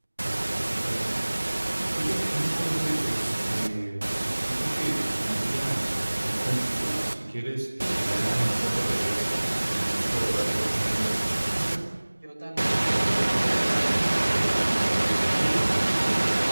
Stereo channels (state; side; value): inverted; both; correlation -1.00